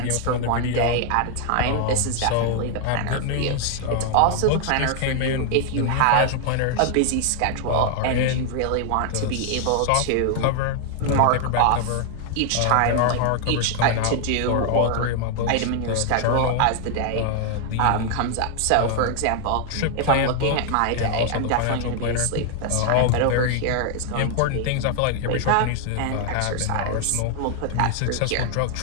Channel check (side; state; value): both; different; correlation 0.00